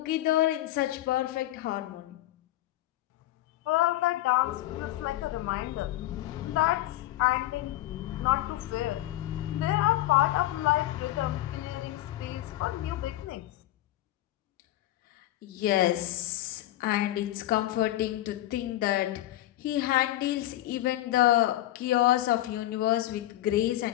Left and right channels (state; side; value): quieter; right; 15.2 dB